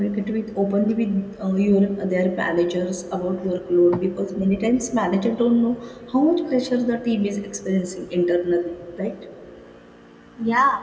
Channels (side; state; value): both; identical; correlation 1.00